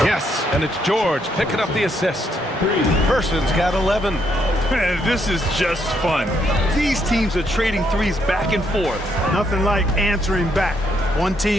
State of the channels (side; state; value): both; normal; correlation 0.74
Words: Yes, and it's George picking up the assist. Person's got 11. Man, this is just fun. These teams are trading threes back and forth. Nothing like answering back. One